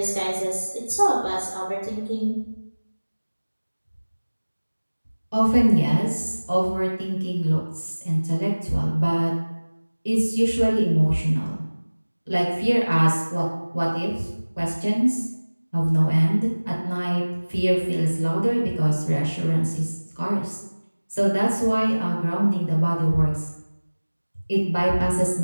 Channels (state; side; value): inverted; both; correlation -1.00